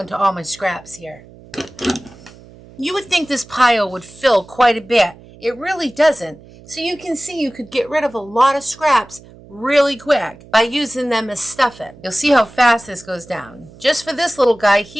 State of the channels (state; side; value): noise; right; hum, 22 dB below the sound